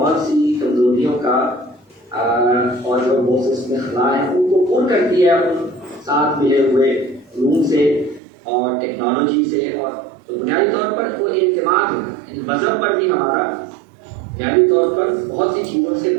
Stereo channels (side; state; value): left; drops out; at 8.2 s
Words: سی کمزوریوں کا اور جو بہت سے خلا ہیں ان کو پور کرتی ہے ان ساتھ ملے ہوئے علوم سے اور ٹیکنالوجی سے، اور تو بنیادی طور پر وہ اعتماد ہوتا ہے، مذہب پر بھی ہمارا بنیادی طور پر بہت سی چیزوں سے